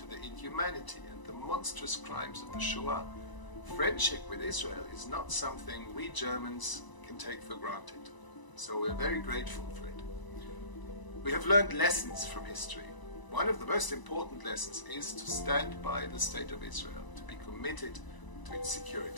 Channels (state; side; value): late; right; 1.0 ms